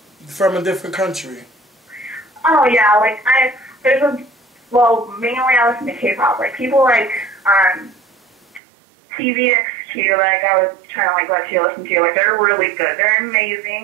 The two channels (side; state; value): left; drops out; at 8.6 s